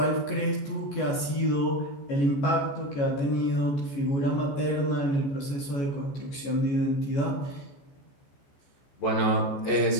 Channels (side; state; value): right; late; 14 ms